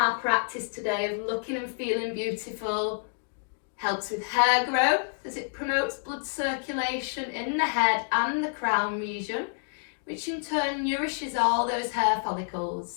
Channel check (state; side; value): silent; right; digital silence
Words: practice today of looking and feeling beautiful Helps with hair growth as it promotes blood circulation in the head and the crown region, which in turn nourishes all those hair